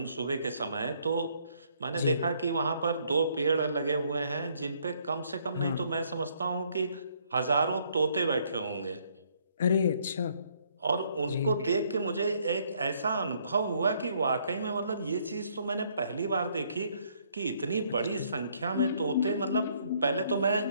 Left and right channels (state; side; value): inverted; both; correlation -0.67